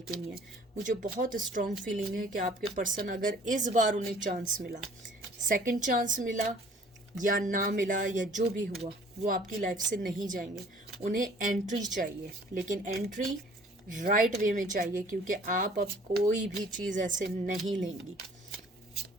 के लिए। मुझे बहुत स्ट्रॉन्ग फीलिंग है कि आपके पर्सन, अगर इस बार उन्हें चांस मिला, सेकंड चांस मिला या ना मिला या जो भी हुआ, वो आपकी लाइफ से नहीं जाएंगे। उन्हें एंट्री चाहिए, लेकिन एंट्री राइट वे में चाहिए, क्योंकि आप अब कोई भी चीज़ ऐसे नहीं लेंगी।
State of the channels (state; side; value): normal; both; correlation 0.54